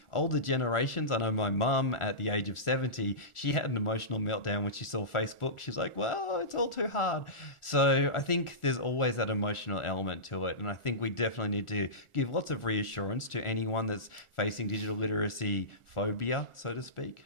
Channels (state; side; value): late; right; 1.4 ms